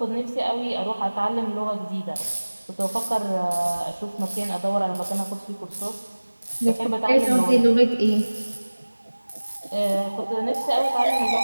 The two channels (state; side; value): inverted; both; correlation -1.00